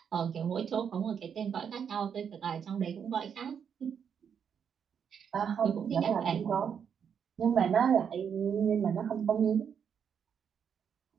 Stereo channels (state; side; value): quieter; left; 7.5 dB